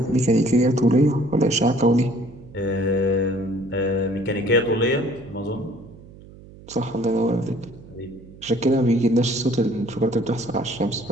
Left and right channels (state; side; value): noise; right; hum, 20 dB below the sound